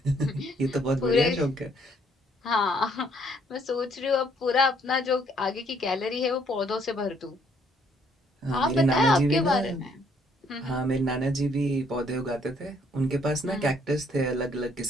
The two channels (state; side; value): normal; both; correlation 0.66